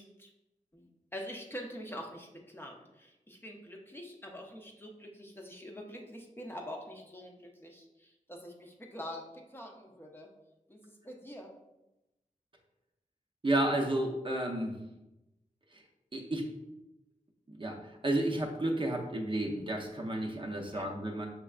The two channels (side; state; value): both; normal; correlation 0.75